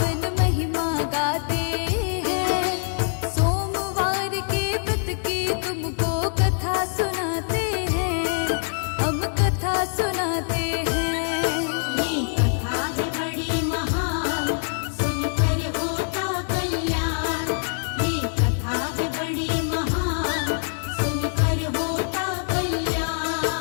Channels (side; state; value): right; silent; digital silence